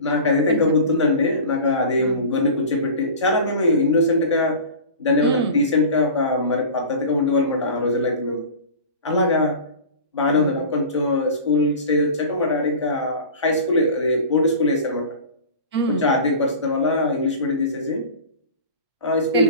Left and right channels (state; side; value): inverted; both; correlation -0.36